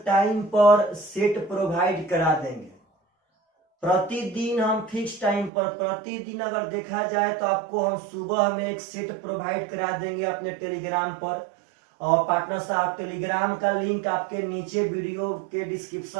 टाइम पर सेट प्रोवाइड करा देंगे। प्रतिदिन हम फिक्स टाइम पर, प्रतिदिन अगर देखा जाए तो आपको हम सुबह में एक सेट प्रोवाइड करा देंगे अपने टेलीग्राम पर। और पार्टनर साहब टेलीग्राम का लिंक आपके नीचे वीडियो के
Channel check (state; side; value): drops out; left; at 5.5 s